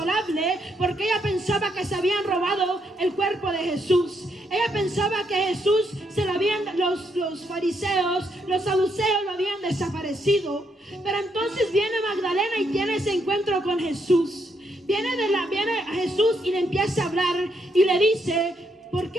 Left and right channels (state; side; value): normal; both; correlation 0.76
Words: porque ella pensaba que se habían robado el cuerpo de Jesús. Ella pensaba que Jesús los fariseos, los saduceos lo habían desaparecido. Pero entonces viene Magdalena y tiene ese encuentro con Jesús. Viene a Jesús y le empieza a hablar y le dice, ¿por